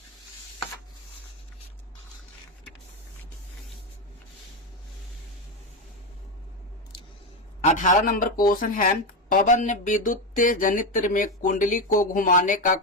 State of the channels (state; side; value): normal; both; correlation 0.12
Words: 18 नंबर क्वेश्चन है पवन विद्युत जनित्र में कुंडली को घुमाने का